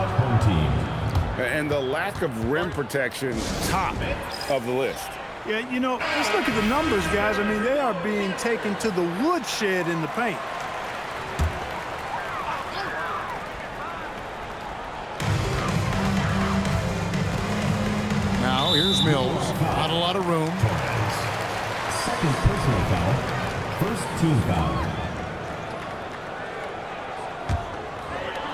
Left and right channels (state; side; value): identical; both; correlation 1.00